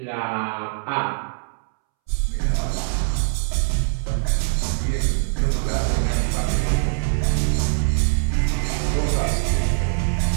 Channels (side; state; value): left; silent; 64 dB below the other